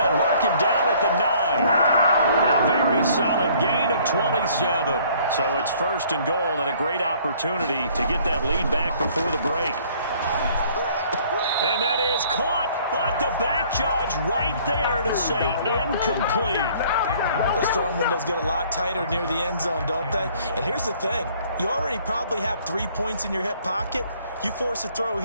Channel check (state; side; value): inverted; both; correlation -0.58